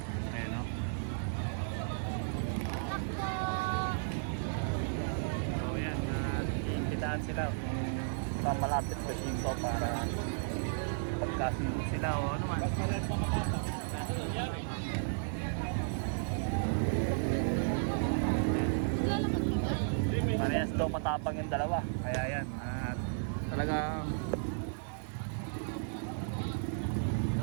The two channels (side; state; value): left; silent; 55 dB below the other